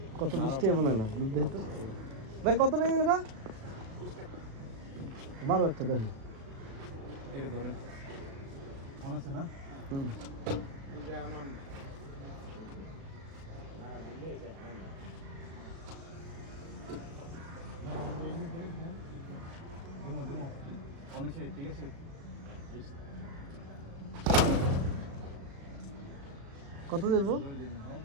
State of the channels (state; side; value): late; left; 36 ms